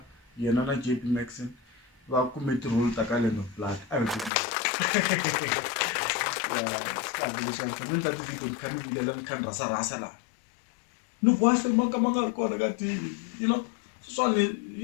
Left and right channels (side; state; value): right; drops out; at 4.3 s